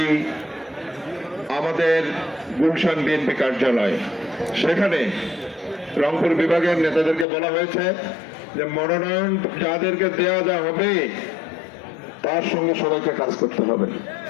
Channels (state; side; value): drops out; right; at 7.2 s